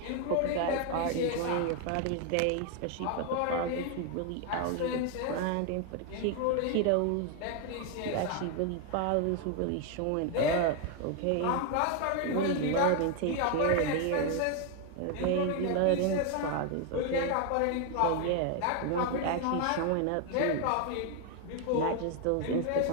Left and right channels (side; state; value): both; different; correlation 0.01